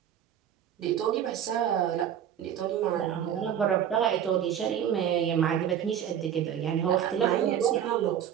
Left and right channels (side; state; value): left; quieter; 9.6 dB